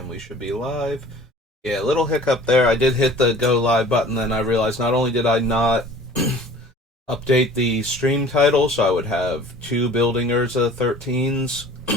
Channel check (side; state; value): both; normal; correlation 0.47